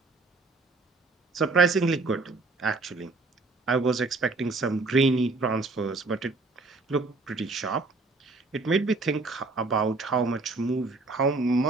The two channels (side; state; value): left; quieter; 3.5 dB